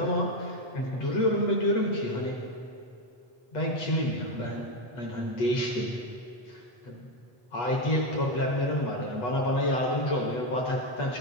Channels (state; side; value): late; right; 8.1 ms